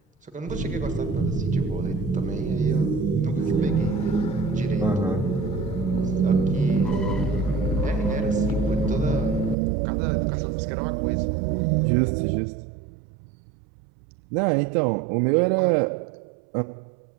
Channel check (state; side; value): drops out; left; at 9.6 s